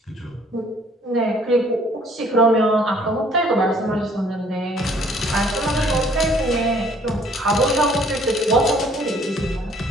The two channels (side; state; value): both; normal; correlation 0.59